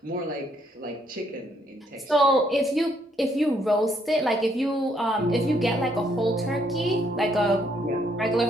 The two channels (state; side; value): normal; both; correlation 0.71